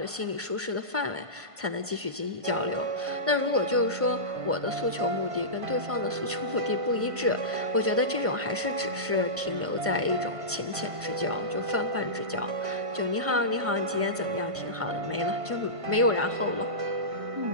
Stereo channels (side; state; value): left; late; 1.5 ms